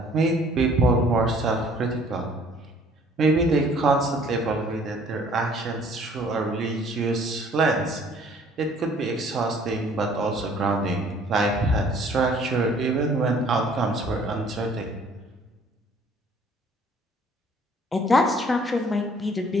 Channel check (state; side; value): normal; both; correlation 0.57